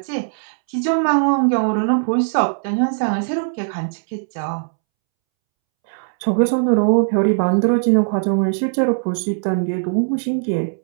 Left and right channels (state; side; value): silent; left; 66 dB below the other